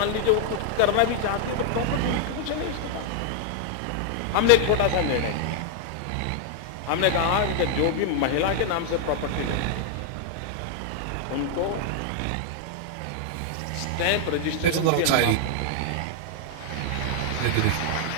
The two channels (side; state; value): both; different; correlation 0.00